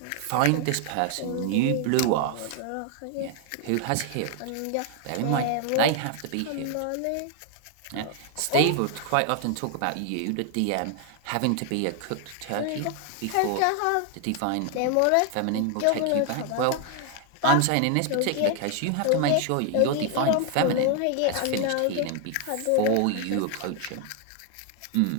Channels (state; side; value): different; both; correlation 0.00